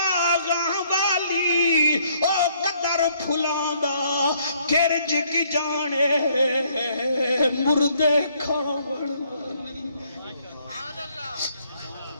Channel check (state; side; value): inverted; both; correlation -0.66